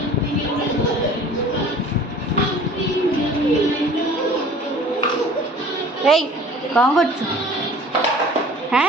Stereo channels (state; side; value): normal; both; correlation 0.47